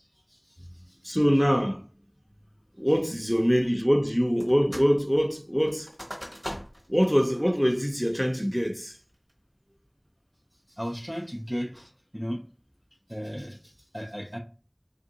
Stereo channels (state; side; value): identical; both; correlation 1.00